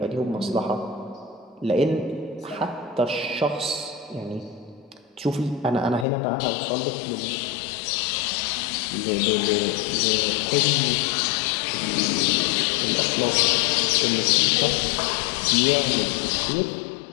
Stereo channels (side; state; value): right; drops out; at 6.1 s